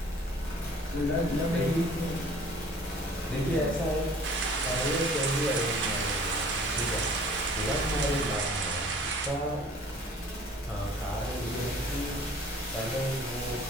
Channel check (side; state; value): both; normal; correlation 0.50